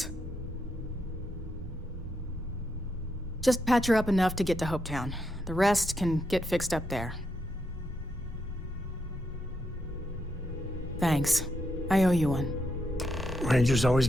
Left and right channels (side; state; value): both; normal; correlation 0.81